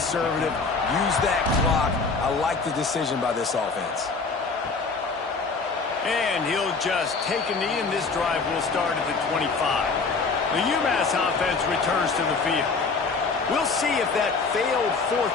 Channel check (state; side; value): quieter; right; 4.4 dB